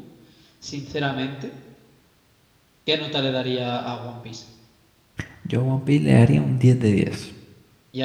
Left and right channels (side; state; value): both; identical; correlation 1.00